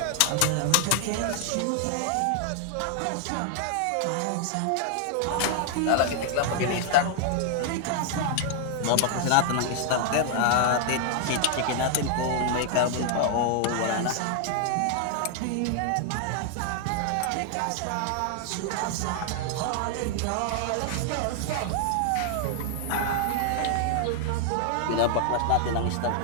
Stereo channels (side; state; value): both; different; correlation 0.00